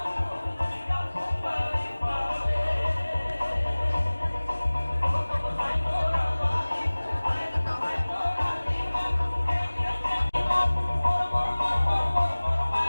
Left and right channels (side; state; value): both; inverted; correlation -1.00